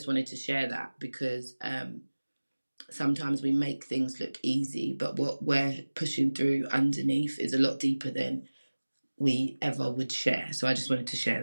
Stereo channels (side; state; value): both; inverted; correlation -1.00